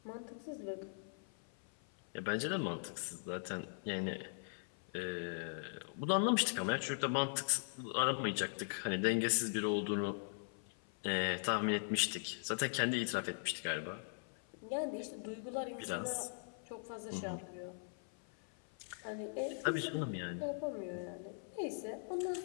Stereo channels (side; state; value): right; silent; 51 dB below the other